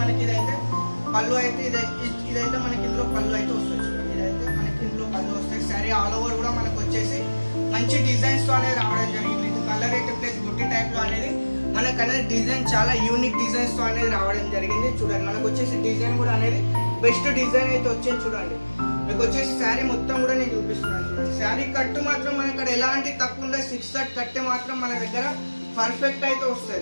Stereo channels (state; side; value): inverted; both; correlation -1.00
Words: మనకి ఇదైతే పళ్ళు అయితే ఇదైతే మనకి ఇందులో పళ్ళు అయితే వస్తుంది. చూడండి ఇదైతే మనకి ఇందులో పళ్ళు వస్తాయి. శారీ ఆల్ ఓవర్ కూడా మనకు వచ్చేసి మంచి డిజైన్స్తో అనేది రావడం జరిగింది. ఇది కలర్ అయితే ప్లస్ బుట్టి టైప్లో అనేది మనకు అనేది డిజైన్ చాలా యూనిక్ డిజైన్స్తో అనేది రావడం జరిగింది. చూడండి మనకు వచ్చేసి డిజైన్ కూడా అనేది బెస్ట్ డిజైన్ అయితే వచ్చింది. చూడండి మీకు వచ్చేసి శారీ మొత్తం కూడా నేను చూపిస్తున్నాను. చూడండి శారీ కట్టు మాత్రం మన ఇక్కడ ఎలాంటి తక్కువ ఉండదు, 6 కట్ కట్టే మాత్రం మన దగ్గర పర్ఫెక్ట్ అయితే